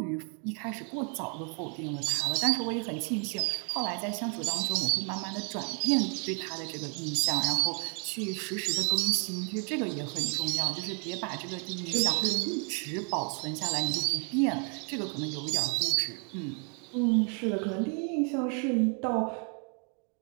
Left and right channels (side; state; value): left; quieter; 39.3 dB